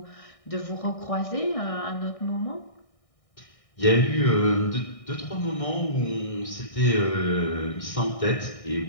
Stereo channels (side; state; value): right; late; 1.6 ms